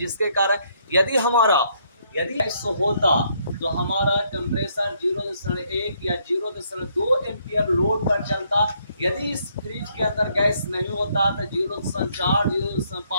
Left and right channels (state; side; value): inverted; both; correlation -0.70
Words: कारण यदि ऐसा होता तो हमारा कंप्रेसर 0.1 या 0.2 एम्पियर लोड पर चलता। यदि इस फ्रिज के अंदर गैस नहीं होता तो 0.4,